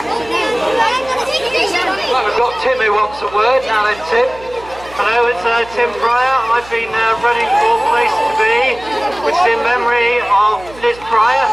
Well, we've got Tim who wants a word, now then Tim. Hello, it's Tim Pryor. I've been running for Place to Be, which is in memory of Liz Pryor,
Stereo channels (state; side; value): noise; right; hum, 20 dB below the sound